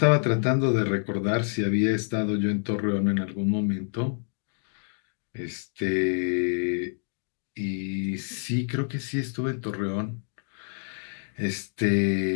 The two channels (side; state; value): right; silent; 60 dB below the other